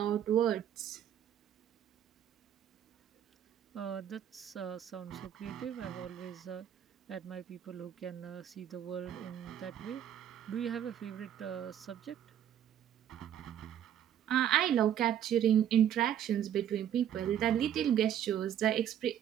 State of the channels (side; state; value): left; quieter; 10.2 dB